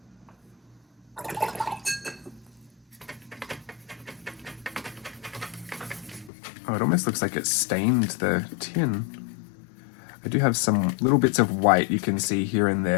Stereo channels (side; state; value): right; drops out; at 6.3 s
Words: Oh, it almost looks like it stained the tin. I do have some little bits of white you can see here and